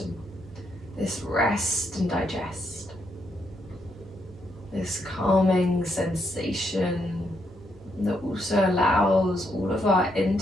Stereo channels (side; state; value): both; normal; correlation 0.77